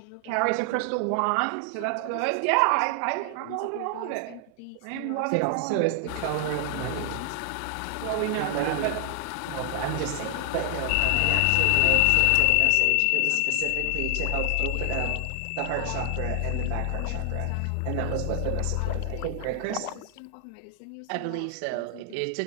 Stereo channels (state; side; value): different; both; correlation 0.00